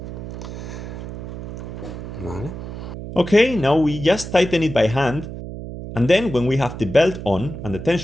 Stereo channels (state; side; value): noise; right; hum, 9 dB below the sound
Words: Vale. Okay, now we just tighten it by hand, and then when we have the belt on and the